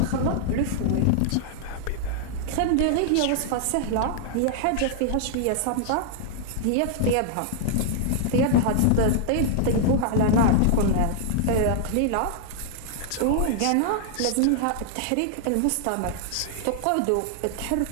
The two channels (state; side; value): different; both; correlation -0.01